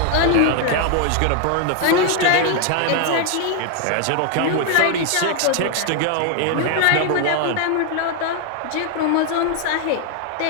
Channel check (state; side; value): different; both; correlation 0.00